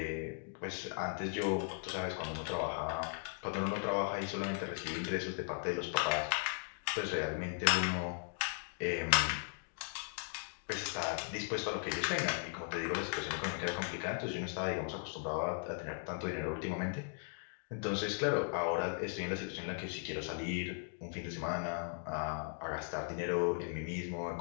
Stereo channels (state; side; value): silent; right; 53 dB below the other